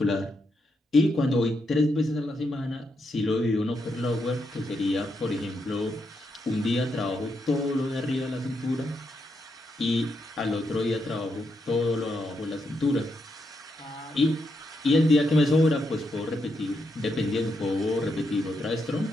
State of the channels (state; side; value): normal; both; correlation 0.81